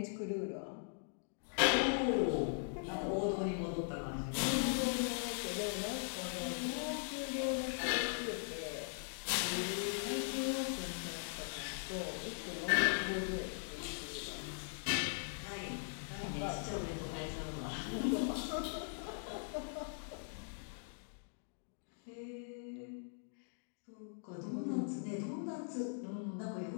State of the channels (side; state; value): right; silent; digital silence